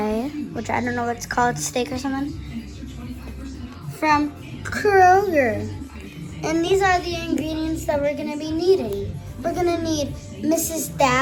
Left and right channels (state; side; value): identical; both; correlation 1.00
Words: which I don't know what it's called, steak or something, from Kroger. And these are the ingredients that we're gonna be needing. We're gonna need Mrs.